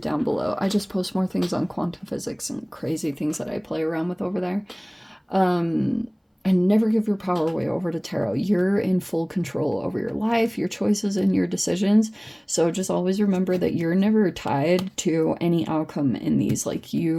down below. I just post more things on quantum physics and crazy things that I play around with over there. And never give your power away over to tarot. You're in full control over your life, your choices, and your decisions. So just always remember that you're never tied to any outcome in these. Like,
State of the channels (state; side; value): identical; both; correlation 1.00